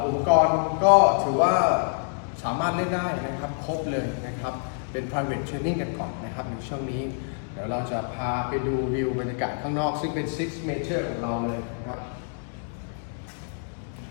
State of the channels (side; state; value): right; silent; digital silence